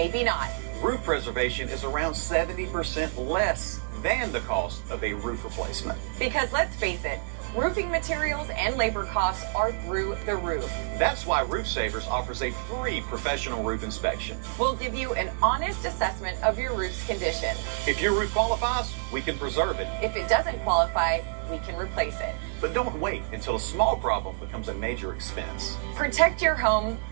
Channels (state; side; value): silent; left; digital silence